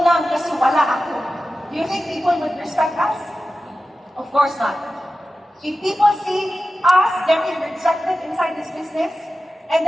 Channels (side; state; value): both; normal; correlation 0.94